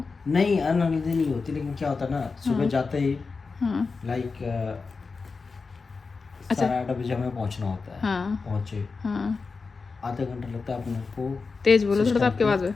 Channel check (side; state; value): right; quieter; 4.5 dB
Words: नहीं, अनहेल्दी नहीं होती, लेकिन क्या होता है ना, सुबह जाते ही हाँ लाइक अच्छा 8:30 बजे हमें पहुंचना होता है। हाँ पहुंचे हाँ, आधा घंटा लगता है अपने को, तेज बोलो थोड़ा सा, सिस्टम आपके पे आवाज में।